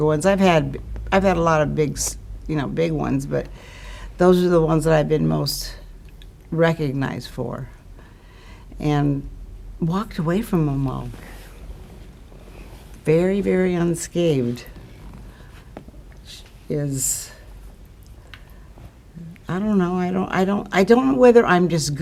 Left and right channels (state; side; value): identical; both; correlation 1.00